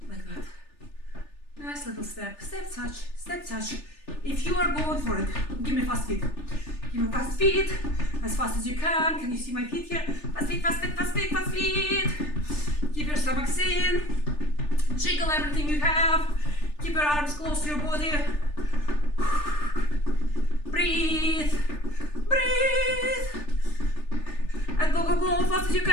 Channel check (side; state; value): right; late; 3.4 ms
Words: Like that. Nice little step. Step touch. Step touch. If you are going for it, give me fast feet. Give me fast feet, as fast as you can. Can you see my feet here? Fast feet, fast feet, fast feet, fast feet. Keep your stomachs in. Jiggle everything you have. Keep your arms close to your body. Breathe. Breathe. And go, go, go, fast as you